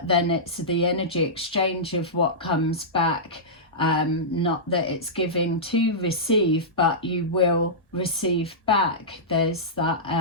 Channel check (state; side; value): normal; both; correlation -0.15